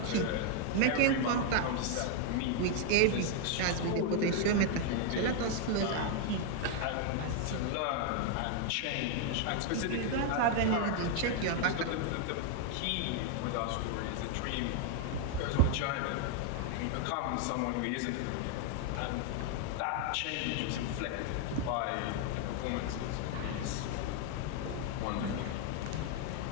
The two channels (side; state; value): both; different; correlation 0.00